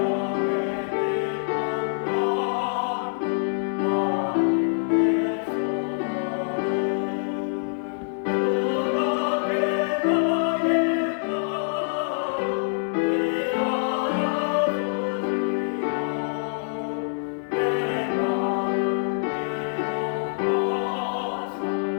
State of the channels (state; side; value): silent; right; 58 dB below the other